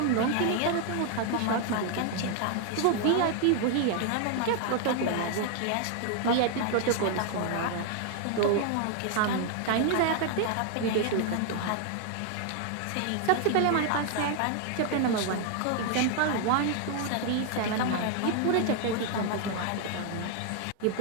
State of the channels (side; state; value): both; different; correlation 0.00